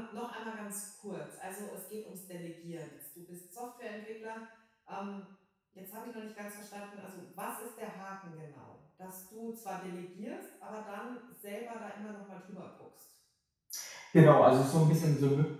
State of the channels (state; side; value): identical; both; correlation 1.00